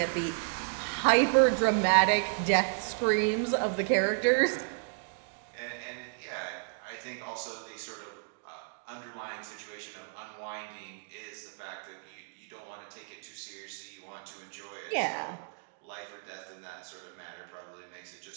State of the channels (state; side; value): silent; left; 56 dB below the other